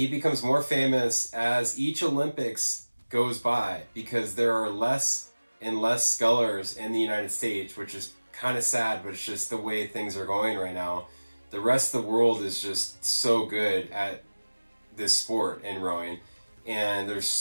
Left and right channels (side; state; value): both; inverted; correlation -1.00